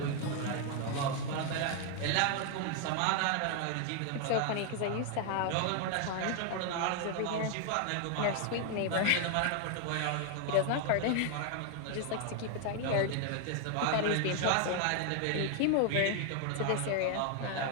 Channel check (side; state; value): both; different; correlation 0.00